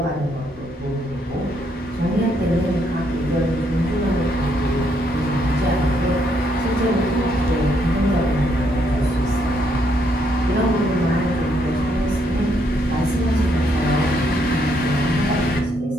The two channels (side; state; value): both; normal; correlation 0.73